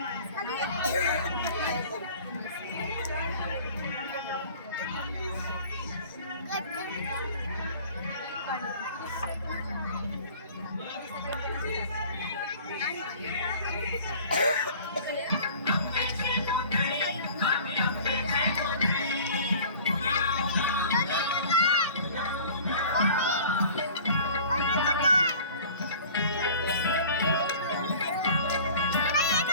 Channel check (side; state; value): both; inverted; correlation -0.45